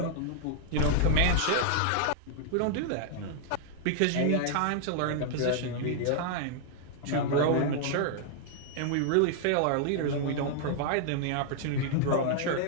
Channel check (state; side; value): different; both; correlation -0.01